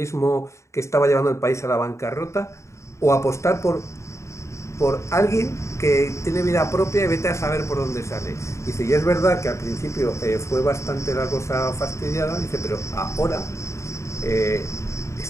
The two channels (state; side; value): late; right; 0.14 ms